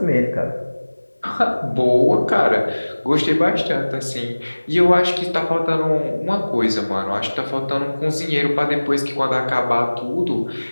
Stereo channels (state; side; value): inverted; both; correlation -1.00